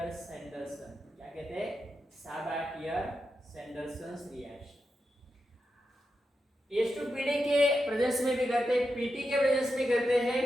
क्या कहते हैं? साबा-टियर-सैंडरसन रिएक्शन। H2PD के प्रेजेंस में भी करते हैं, PT के प्रेजेंस में करते हैं।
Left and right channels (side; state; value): both; normal; correlation 0.88